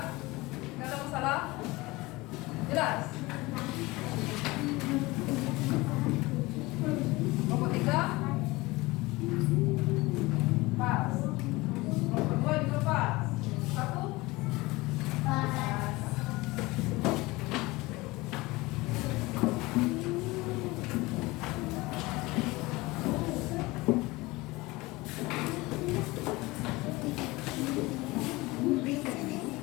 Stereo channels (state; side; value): quieter; right; 21.6 dB